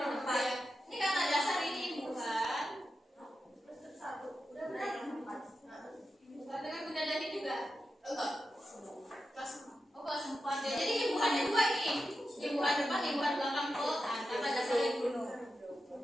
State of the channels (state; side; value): normal; both; correlation 0.90